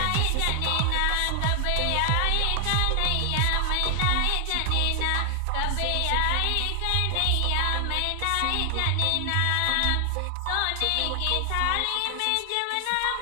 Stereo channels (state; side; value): different; both; correlation 0.00